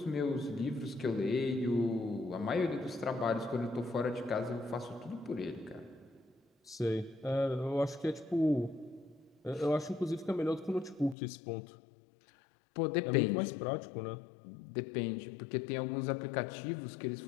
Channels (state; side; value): drops out; right; at 11.2 s